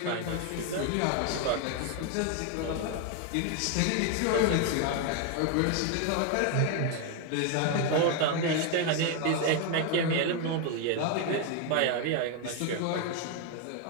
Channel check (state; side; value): different; both; correlation 0.01